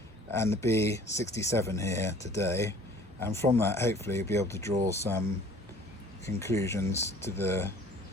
and the B67 here today, and from that hopefully you'll be able to draw some conclusions to the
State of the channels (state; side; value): normal; both; correlation 0.51